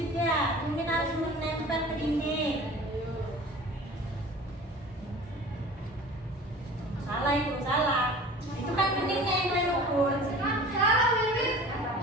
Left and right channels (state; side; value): normal; both; correlation 0.42